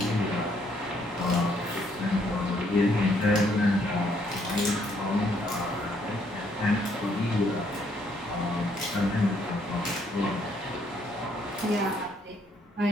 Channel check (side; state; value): both; normal; correlation 0.69